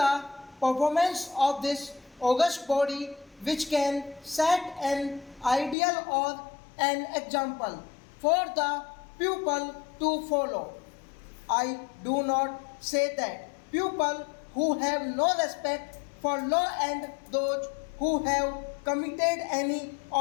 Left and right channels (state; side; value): drops out; right; at 5.8 s